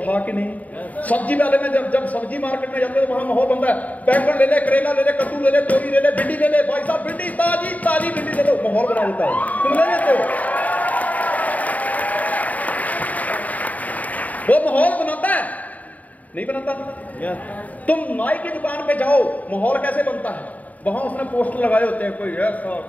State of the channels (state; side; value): late; right; 0.073 ms